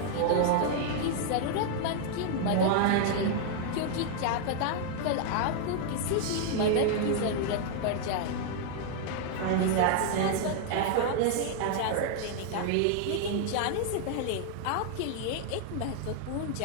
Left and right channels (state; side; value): different; both; correlation -0.01